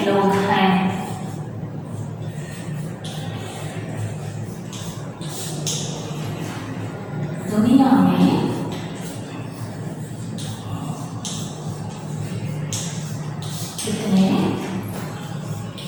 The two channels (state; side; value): identical; both; correlation 1.00